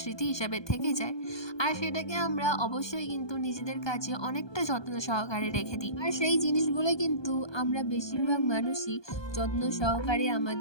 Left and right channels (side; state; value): right; late; 1.2 ms